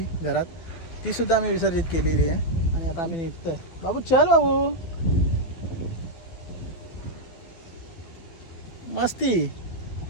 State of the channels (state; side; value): late; right; 12 ms